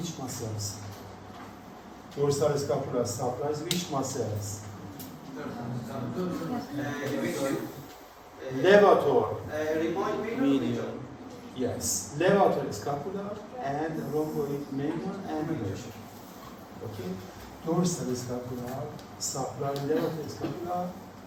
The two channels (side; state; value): both; identical; correlation 1.00